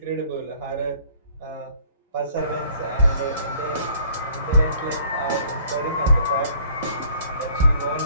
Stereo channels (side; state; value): both; inverted; correlation -0.57